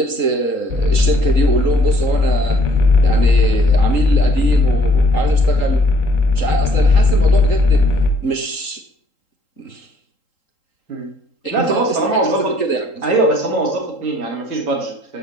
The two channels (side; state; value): right; late; 3.8 ms